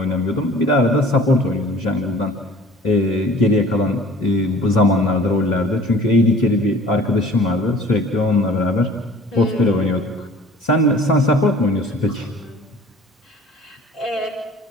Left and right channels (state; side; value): normal; both; correlation 0.48